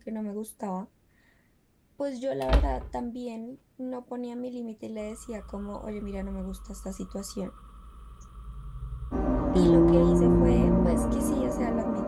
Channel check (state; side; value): identical; both; correlation 1.00